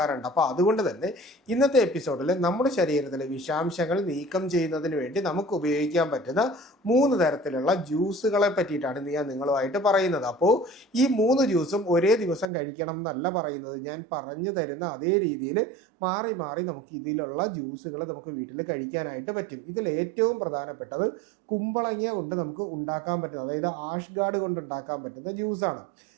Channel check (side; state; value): left; drops out; at 12.5 s